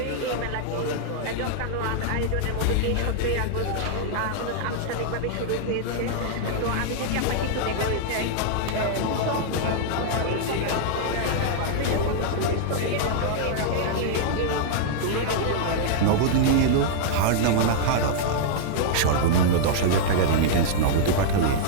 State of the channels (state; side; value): different; both; correlation -0.01